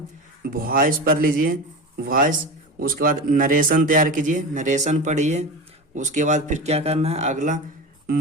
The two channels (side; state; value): both; normal; correlation 0.26